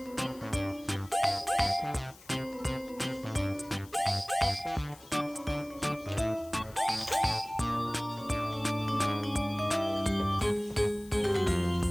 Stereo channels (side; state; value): left; noise; hiss, 22 dB below the sound